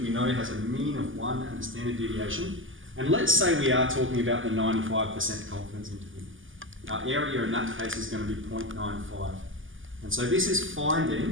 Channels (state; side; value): late; left; 0.58 ms